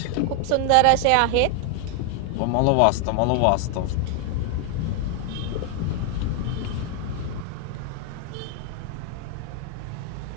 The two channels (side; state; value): both; different; correlation 0.00